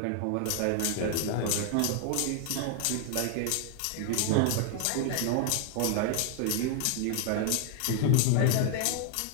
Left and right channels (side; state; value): both; different; correlation 0.00